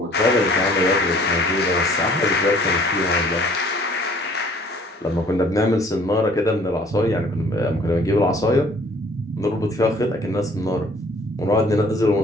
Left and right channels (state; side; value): normal; both; correlation 0.56